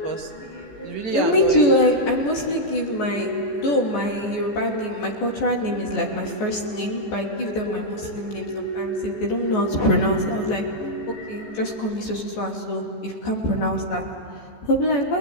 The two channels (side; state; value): right; late; 14 ms